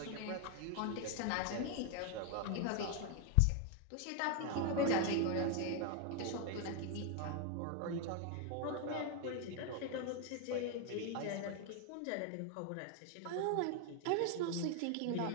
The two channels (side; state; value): both; different; correlation 0.01